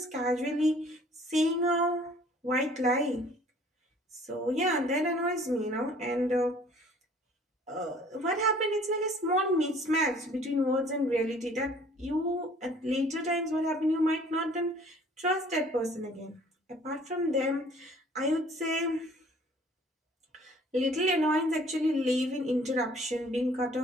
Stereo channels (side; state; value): both; normal; correlation 0.54